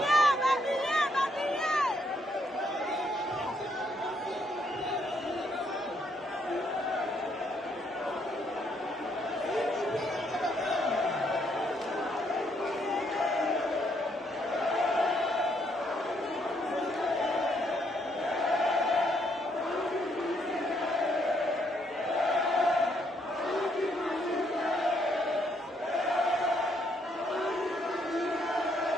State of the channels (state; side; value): normal; both; correlation 0.72